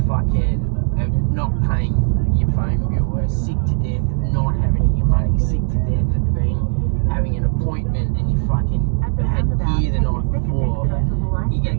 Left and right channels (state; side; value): silent; left; 67 dB below the other